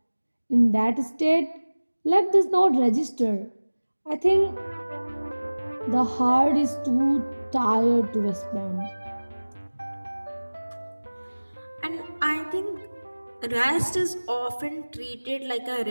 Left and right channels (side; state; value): both; inverted; correlation -1.00